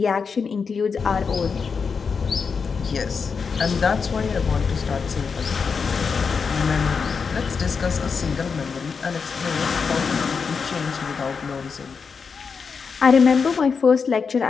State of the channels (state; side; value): quieter; right; 5.6 dB